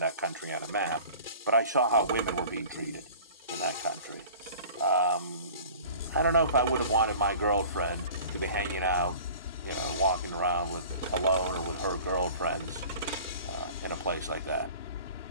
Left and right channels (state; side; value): inverted; both; correlation -0.44